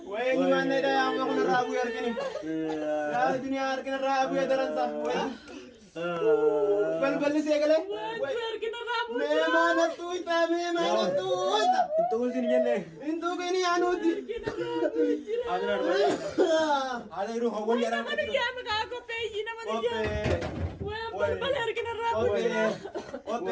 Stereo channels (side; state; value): both; identical; correlation 1.00